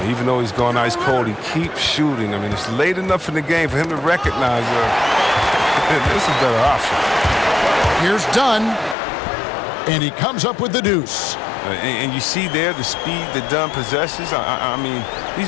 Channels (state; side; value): drops out; right; at 9.0 s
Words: Even though he's gone ice cold, he keeps shooting. I mean, it's late enough in the game for him to recognize this is a better option. Here's Dunn, and he comes up with the deuce. And you see there the speed that Dunn possesses. I mean,